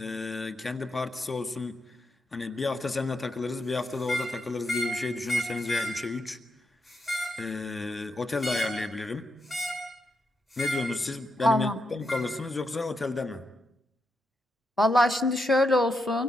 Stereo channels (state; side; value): normal; both; correlation 0.83